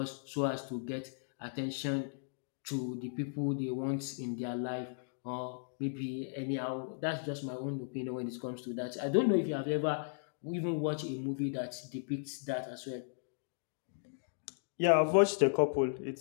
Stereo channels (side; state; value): right; silent; digital silence